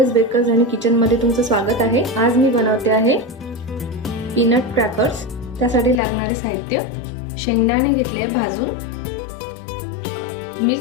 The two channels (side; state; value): right; drops out; at 6.0 s